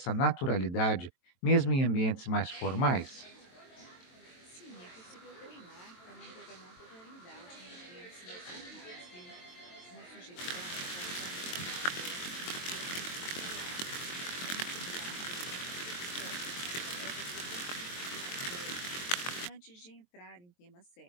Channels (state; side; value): late; right; 23 ms